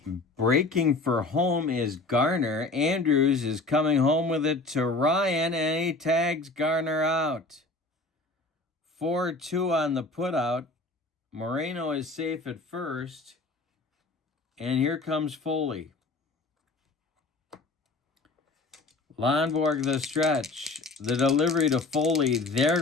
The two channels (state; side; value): quieter; right; 3.3 dB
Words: Breaking for home is Garner. Andrews is coming home with it to Ryan, and he tags Garner out. 4-2 on the putout. Moreno is safe at first, and here comes Foley. Lonborg the stretch. The delivery to Foley. There